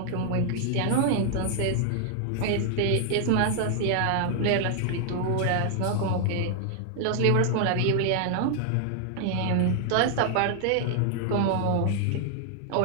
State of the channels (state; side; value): different; both; correlation 0.00